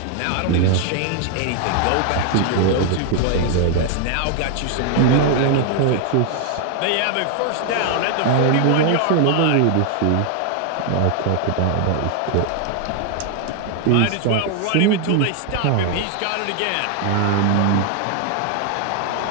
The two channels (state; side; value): different; both; correlation 0.00